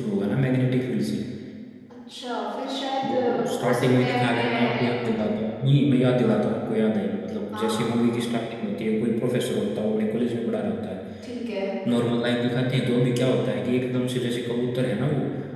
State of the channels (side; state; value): both; identical; correlation 1.00